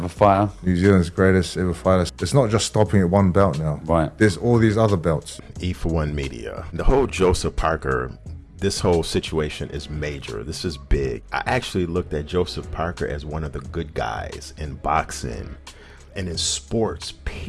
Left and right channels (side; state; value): both; identical; correlation 1.00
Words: fighter? New Zealand's greatest ever fighter. It's not just stopping at one belt now. Right. There's all these other belts. E4One Media. The whole Joseph Parker, this whole situation is major. This is big. I actually looked at Joseph Parker as one of the good guys in boxing and in sports,